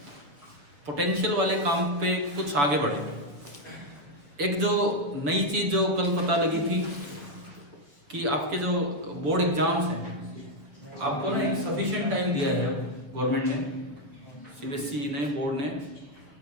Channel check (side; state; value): left; late; 6.9 ms